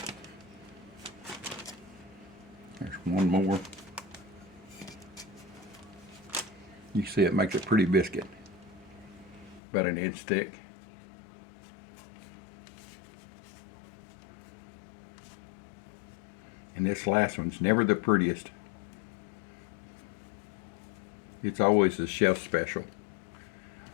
There's one more. You see it makes a pretty biscuit. About 1 inch thick. And this last one's never the prettiest. It's always a chef special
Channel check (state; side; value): drops out; right; at 9.6 s